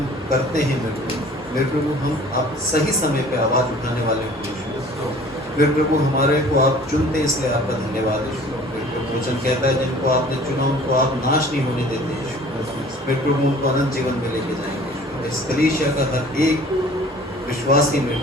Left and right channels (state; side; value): normal; both; correlation 0.49